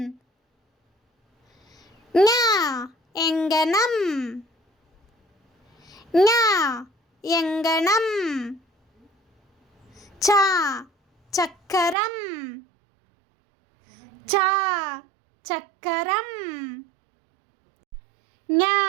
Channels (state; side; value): drops out; left; at 12.0 s